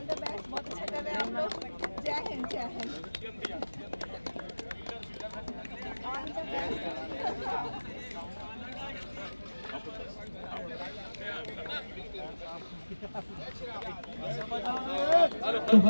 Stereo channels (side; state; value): both; inverted; correlation -1.00